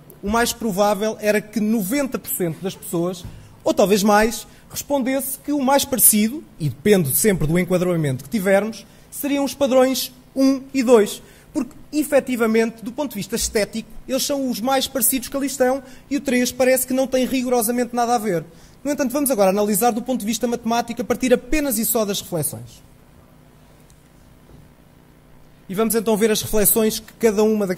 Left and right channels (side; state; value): both; identical; correlation 1.00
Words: o mais provável era que 90% das pessoas, ou talvez mais, respondesse que o mais parecido, e depende sempre do enquadramento que tivermos, seriam os padrões 1 e 2. Porque, efetivamente, do ponto de vista estético, eles são os mais parecidos que ali estão e o 3 parece que não tem rigorosamente nada a ver. No entanto, vamos agora analisar do ponto de vista matemático a partir apenas e só das reflexões. E vamos então ver as reflexões que cada uma